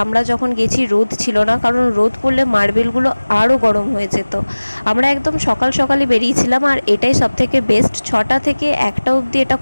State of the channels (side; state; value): both; inverted; correlation -1.00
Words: আমরা যখন গেছি রোদ ছিল না, কারণ রোদ পড়লে মার্বেলগুলো আরও গরম হয়ে যেত। আমরা একদম সকাল সকালে বেরিয়েছিলাম, আর এটাই সবথেকে বেস্ট। 6টা থেকে 1টা অবধি এটা